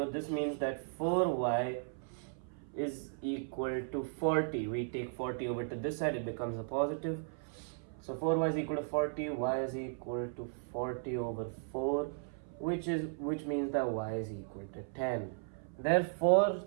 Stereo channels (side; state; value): left; silent; 54 dB below the other